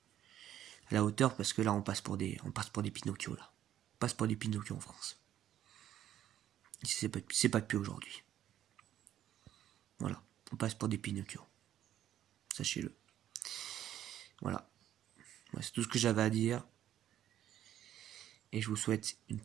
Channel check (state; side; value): quieter; left; 11.4 dB